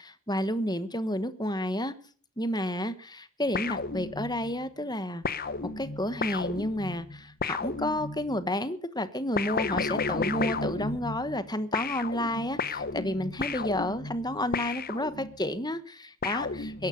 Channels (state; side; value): normal; both; correlation 0.50